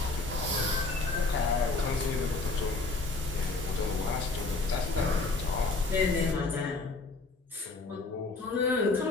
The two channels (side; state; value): right; quieter; 3.5 dB